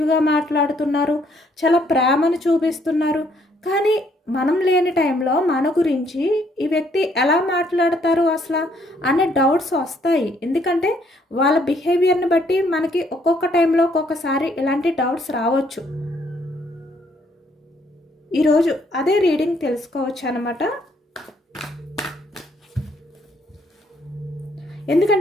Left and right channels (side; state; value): both; normal; correlation 0.68